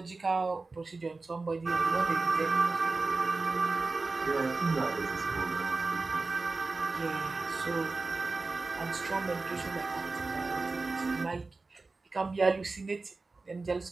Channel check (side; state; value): left; quieter; 3.7 dB